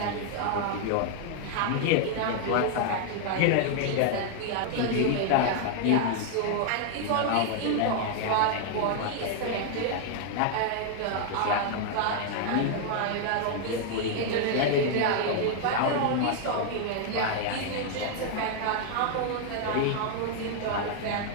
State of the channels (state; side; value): different; both; correlation 0.00